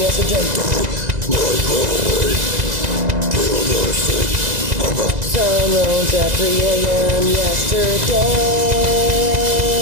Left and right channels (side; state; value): left; late; 2.0 ms